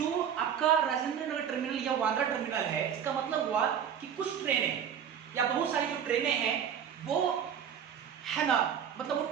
आपका राजेंद्र नगर टर्मिनल या वांद्रा टर्मिनल है, इसका मतलब हुआ कि कुछ ट्रेनें या बहुत सारी जो ट्रेनें हैं वो है ना, मतलब वो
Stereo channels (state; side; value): quieter; left; 8.4 dB